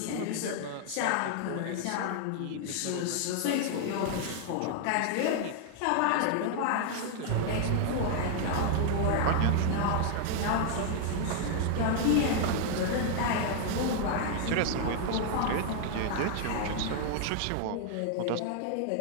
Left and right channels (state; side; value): different; both; correlation 0.00